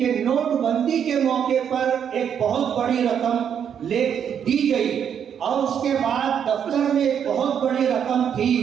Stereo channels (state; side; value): quieter; left; 8.3 dB